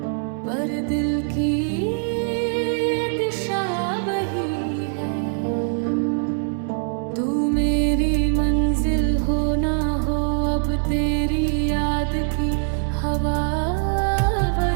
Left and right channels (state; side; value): silent; left; digital silence